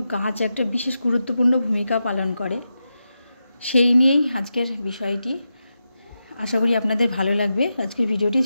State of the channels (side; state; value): both; inverted; correlation -0.89